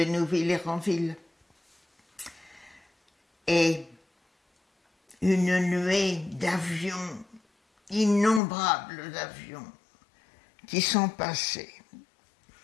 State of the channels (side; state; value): right; drops out; at 8.4 s